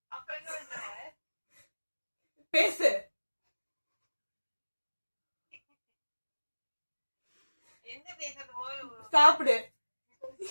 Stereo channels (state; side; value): inverted; both; correlation -1.00